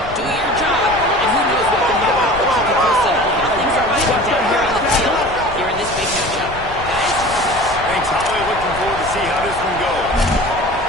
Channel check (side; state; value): left; noise; rumble, 14 dB below the sound